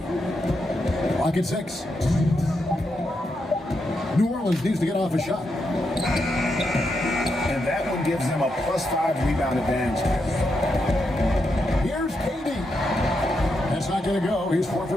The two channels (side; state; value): both; normal; correlation 0.83